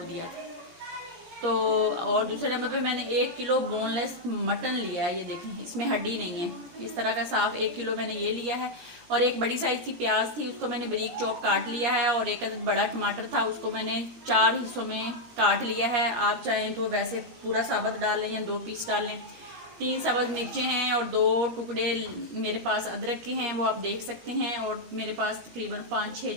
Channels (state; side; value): late; left; 17 ms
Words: दिया था। तो और दूसरे नंबर पे मैंने 1 किलो बोनलेस मटन लिया है। ये देखें, इसमें हड्डी नहीं है। इस तरह का साफ 1 किलो मैंने ये लिया है। और एक बड़ी साइज़ की प्याज थी, उसको मैंने बारीक चॉप काट लिया है। और एक बड़ा टमाटर था, उसको मैंने 4 हिस्सों में काट लिया है। आप चाहें तो वैसे पूरा साबुत डाल लें या 2 पीस डाल लें। 3 सब्ज़ मिर्चें हैं और 2 टुकड़े मेरे पास अदरक के हैं, वो आप देख सकते हैं। और मेरे पास तकरीबन 5-6